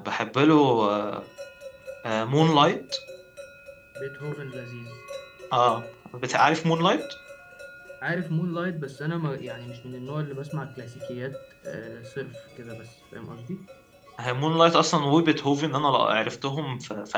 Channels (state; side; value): identical; both; correlation 1.00